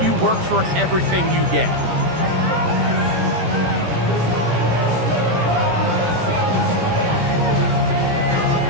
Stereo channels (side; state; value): left; late; 17 ms